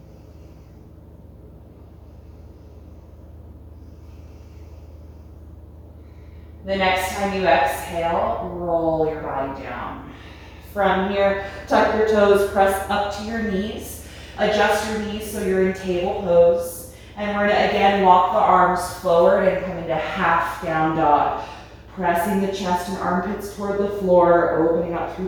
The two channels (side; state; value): both; identical; correlation 1.00